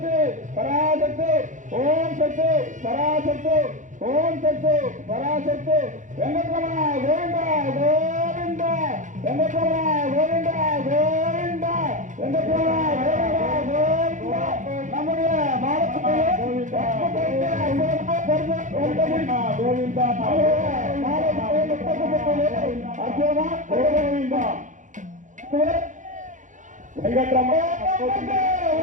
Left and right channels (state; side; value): late; left; 0.36 ms